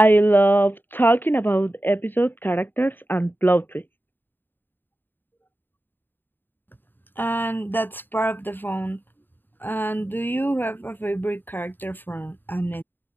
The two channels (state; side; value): late; right; 0.094 ms